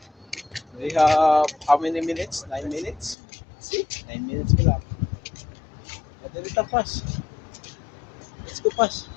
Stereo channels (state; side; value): drops out; right; at 3.2 s